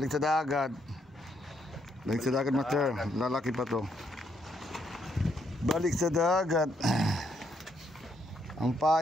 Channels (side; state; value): both; normal; correlation 0.74